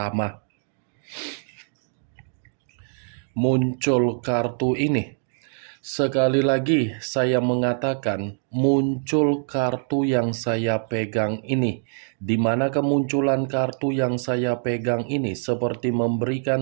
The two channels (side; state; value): left; silent; digital silence